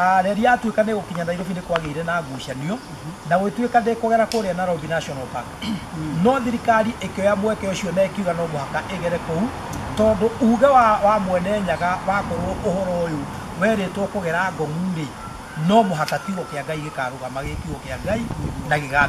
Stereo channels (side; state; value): both; identical; correlation 1.00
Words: reri yatuä ka nä gå kinya Nairobi nä kwagä ire na ngucanio na gå tuä ka ndä kå gera kå rä a Nairobi National Park no thirikari ä kä oya mweke å cio na ä kiuga no mũhaka ä gere kå u tondå uge wa mwene nyaga wakorwo å horo å yå werä two kå gera ngong'u rä no mũhaka kiugo kä a Ngai gä karå gama gä kiugo kä a Ngai na gä